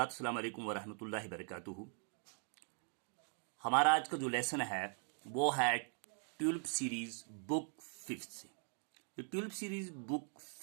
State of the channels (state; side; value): silent; left; 50 dB below the other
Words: अस्सलाम वालेकुम वरहमतुल्लाहि वबरकातुहू। हमारा आज का जो लेसन है वो है ट्यूलिप सीरीज बुक फिफ्थ से। ये ट्यूलिप सीरीज बुक